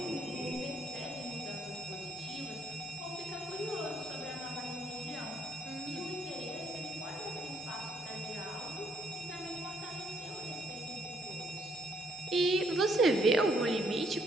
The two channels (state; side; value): normal; both; correlation 0.69